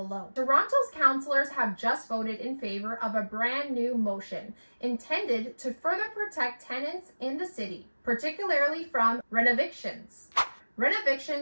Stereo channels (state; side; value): inverted; both; correlation -1.00